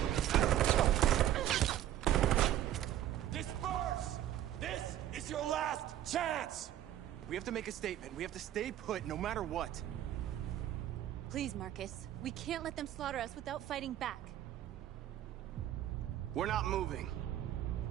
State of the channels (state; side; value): quieter; left; 12.3 dB